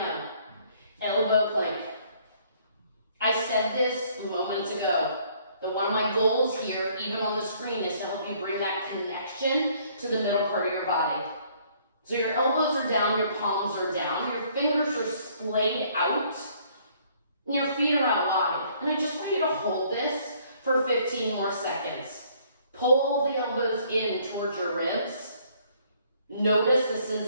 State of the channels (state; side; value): inverted; both; correlation -0.62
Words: Elbow plank. I said this moments ago. That one of my goals here, even on the screen, is to help you bring that connection to the middle part of your body. So your elbows are down, your palms are down, your fingers are splayed out, and your feet are out wide. And I just want you to hold this for 15 more seconds. Pull the elbows in towards your ribs. Notice the